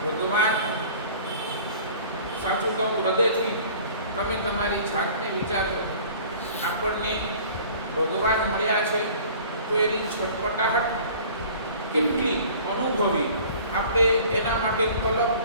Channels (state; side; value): inverted; both; correlation -0.47